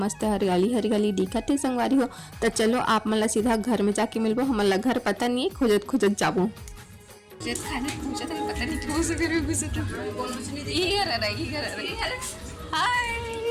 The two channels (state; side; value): identical; both; correlation 1.00